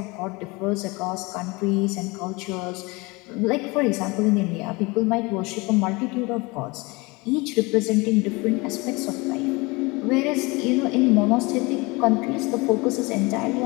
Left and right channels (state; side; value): quieter; right; 25.2 dB